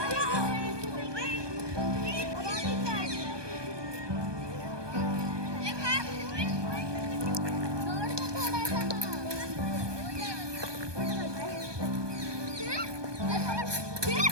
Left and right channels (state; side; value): late; left; 1.2 ms